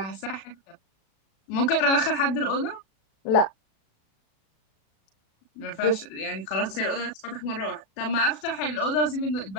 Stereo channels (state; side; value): late; right; 36 ms